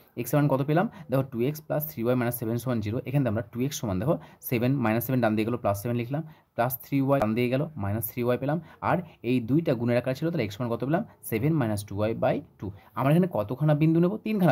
এক্সের মান কত পেলাম দেখো, 2x + 3y - 7 = 0। এখানে আমরা 2x সমান দেখো 7 - 7 ডান দিয়ে গেলো +7 লিখলাম, +3y ডান দিয়ে গেল -3y পেলাম, আর এই দুইটা গুণের আকার ছিল তাহলে x সমান কত পেলাম 7 - 2y/2। আমরা এখানে কতখানা বিন্দু নেব,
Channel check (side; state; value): both; identical; correlation 1.00